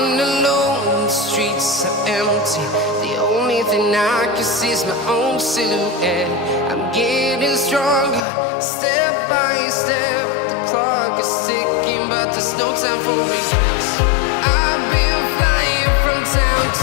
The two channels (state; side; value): drops out; right; at 8.2 s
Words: alone, the streets are empty. The only thing I can see is my own silhouette. I'm getting stronger, step by step. The clock is ticking, but there's no time for regrets. I've been flying from town